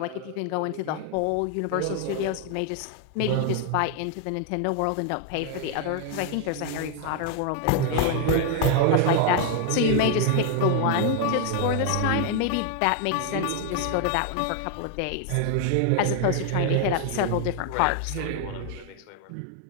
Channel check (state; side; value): different; both; correlation 0.00